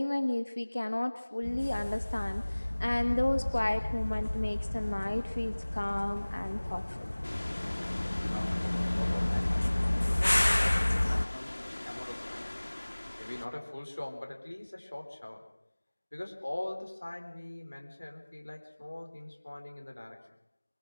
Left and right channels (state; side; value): inverted; both; correlation -1.00